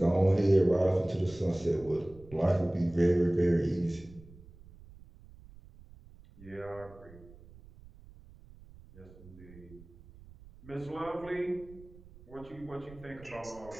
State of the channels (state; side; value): noise; right; rumble, 21 dB below the sound